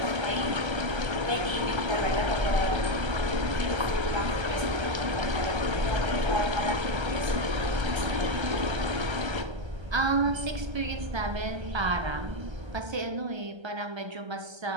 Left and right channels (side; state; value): left; late; 1.3 ms